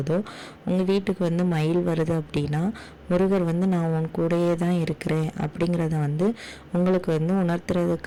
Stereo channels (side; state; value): both; identical; correlation 1.00